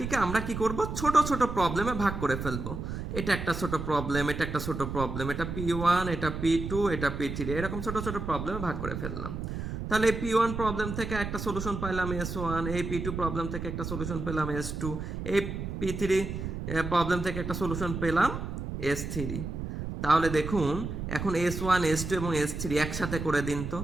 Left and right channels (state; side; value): noise; right; rumble, 5 dB below the sound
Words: আমরা কি করব, ছোট ছোট প্রবলেমে ভাগ করে ফেলবো। এটা একটা ছোট প্রবলেম, এটা একটা ছোট প্রবলেম, এটা P1, এটা P2, এটা P3, এরকম ছোট ছোট প্রবলেমে ভাগ করে ফেললাম। তাহলে এই P1 প্রবলেম থেকে একটা সলিউশন পাইলাম S1, এই P2 প্রবলেম থেকে একটা সলিউশন পেলাম S2, এই P3 প্রবলেম থেকে একটা সলিউশন পেলাম S3। তাহলে দেখুন এখন S1, S2 এবং S3 একসাথে করে দিন তো,